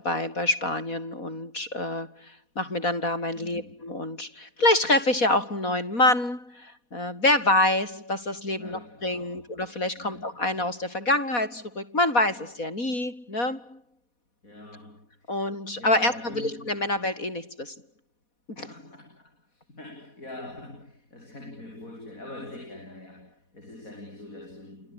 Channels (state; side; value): late; right; 4.1 ms